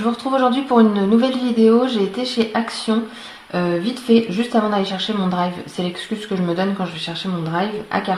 vous retrouve aujourd'hui pour une nouvelle vidéo. J'ai été chez Action, vite fait, juste avant d'aller chercher mon drive. C'est l'excuse que je me donne quand je vais chercher mon drive à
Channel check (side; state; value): both; identical; correlation 1.00